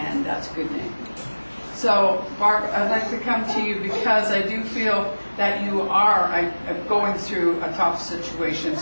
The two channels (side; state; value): both; inverted; correlation -1.00